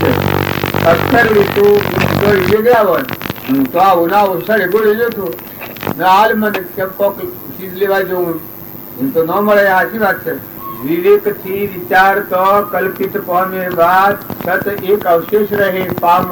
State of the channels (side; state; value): both; identical; correlation 1.00